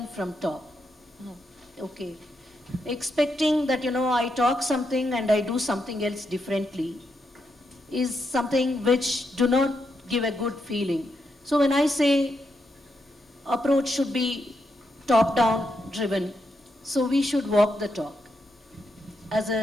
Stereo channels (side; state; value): both; normal; correlation 0.82